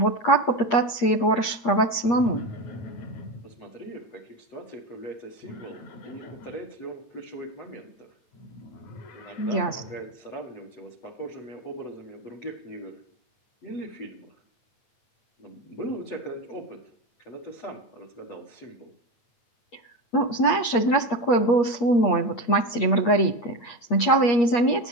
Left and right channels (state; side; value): late; right; 8.5 ms